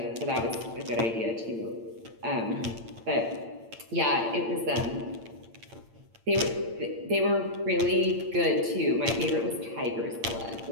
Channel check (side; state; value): left; late; 8.8 ms